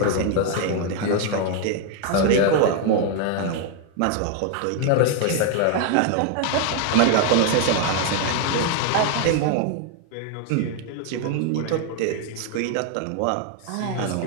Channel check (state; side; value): different; both; correlation 0.01